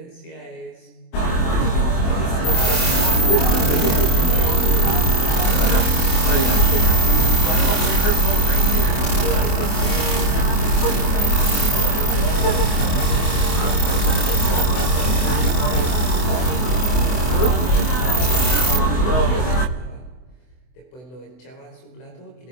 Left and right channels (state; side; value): late; right; 24 ms